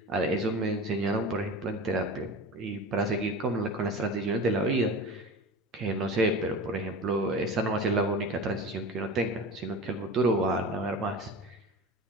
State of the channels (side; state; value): both; normal; correlation 0.32